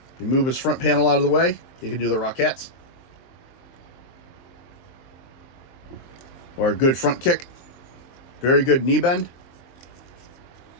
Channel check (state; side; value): late; right; 23 ms